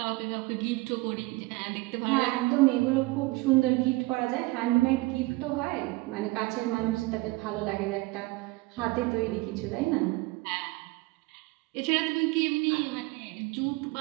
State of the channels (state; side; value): quieter; left; 22.4 dB